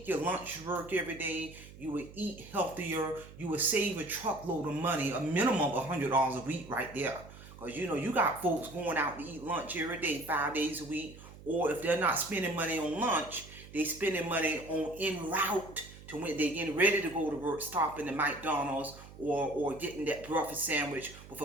your lunch to work every day. You will eat healthier. You will save a truckload of money, a minimum of $100 a week right there. Because you got folks going out to eat lunch every day, 5 days a week. Or if they're not spending money on lunch, they spending money on en route to when they're getting ready to go to work, stopping at McDonald's or getting that breakfast sandwich with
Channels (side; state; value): right; noise; hum, 17 dB below the sound